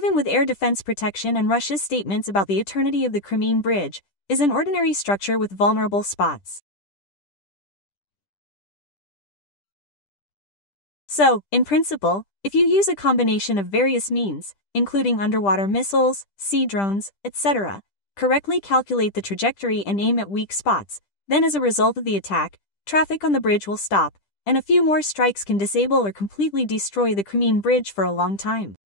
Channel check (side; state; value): right; late; 10 ms